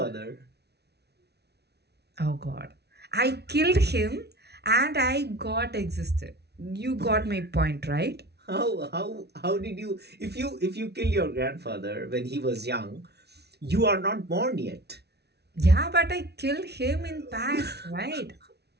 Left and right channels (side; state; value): left; late; 0.49 ms